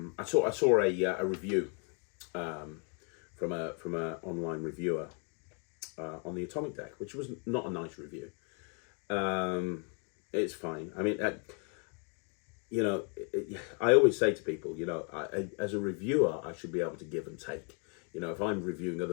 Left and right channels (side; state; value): right; quieter; 39.3 dB